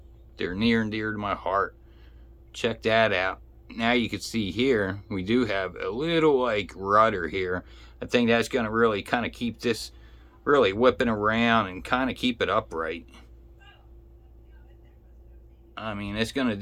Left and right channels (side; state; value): both; identical; correlation 1.00